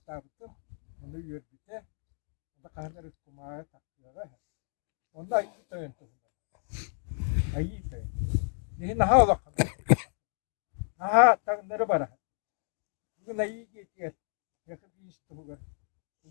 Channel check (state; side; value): silent; right; 57 dB below the other